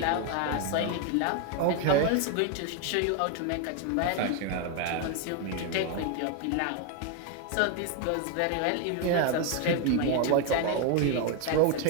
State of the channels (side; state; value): both; different; correlation 0.01